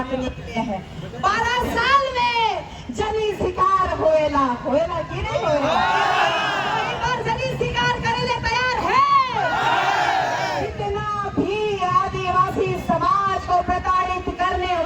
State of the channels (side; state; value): both; identical; correlation 1.00